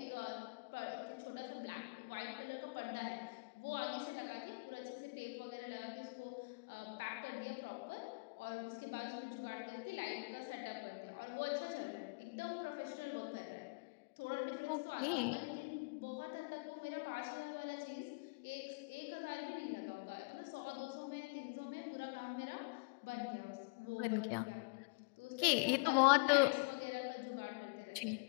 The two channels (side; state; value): right; quieter; 34.2 dB